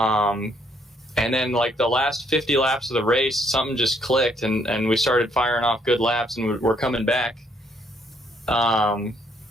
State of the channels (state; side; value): normal; both; correlation 0.69